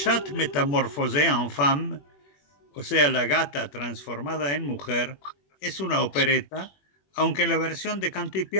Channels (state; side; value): late; right; 21 ms